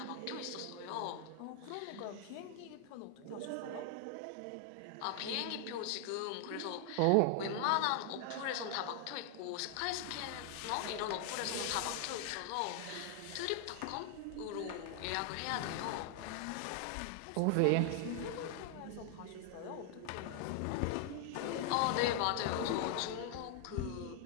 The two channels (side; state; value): both; different; correlation 0.00